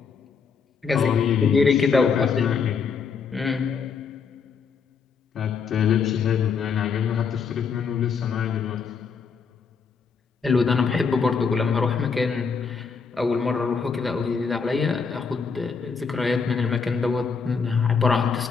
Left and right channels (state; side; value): quieter; right; 5.6 dB